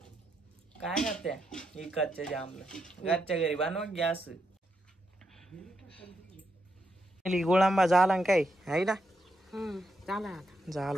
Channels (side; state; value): both; normal; correlation 0.82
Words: काय करते इकडच्या जामला घरच्या घरी बनवा गॅस. गुळांबा झाला काय आहे ना. झाला आता.